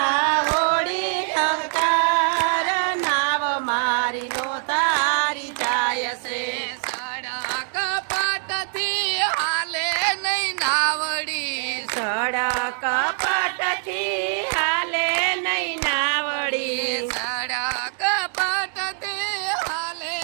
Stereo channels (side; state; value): left; silent; 63 dB below the other